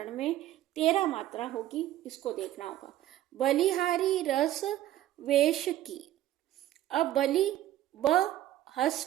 में 13 मात्रा होगी, इसको देखना होगा। बलिहारी रस वेश की। अब बलि ब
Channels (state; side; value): quieter; left; 13.4 dB